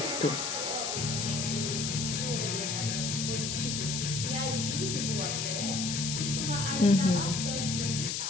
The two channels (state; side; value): noise; left; hiss, 1 dB below the sound